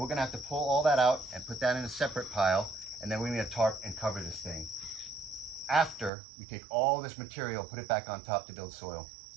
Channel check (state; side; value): drops out; left; at 6.1 s